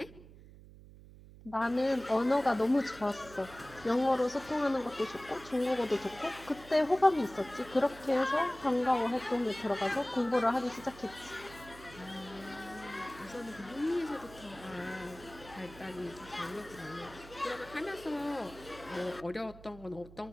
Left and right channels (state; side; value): noise; right; hum, 19 dB below the sound